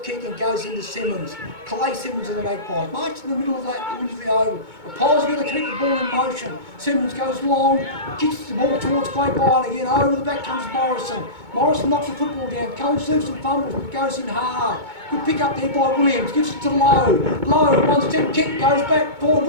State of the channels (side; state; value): left; late; 2.2 ms